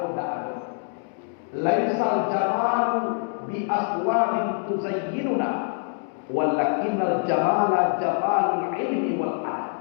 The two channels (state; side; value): silent; right; 62 dB below the other